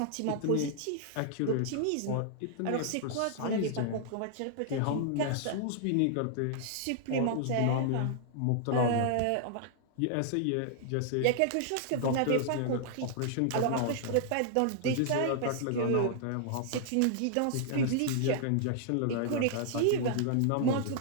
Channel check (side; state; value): both; different; correlation -0.01